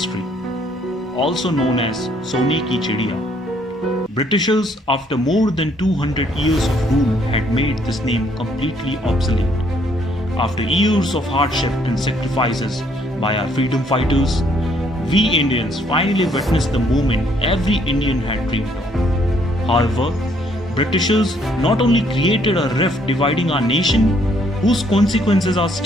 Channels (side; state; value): both; normal; correlation 0.67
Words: also known as Sone ki Chidiya. Britishers, after more than 200 years of rule, had made this name completely obsolete. After years of hardship and sacrifices by our freedom fighters, we Indians finally witnessed the moment every Indian had dreamed of. However, Britishers not only created a rift dividing our nation, whose consequences are